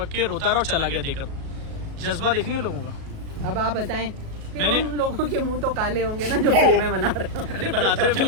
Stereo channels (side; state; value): left; late; 37 ms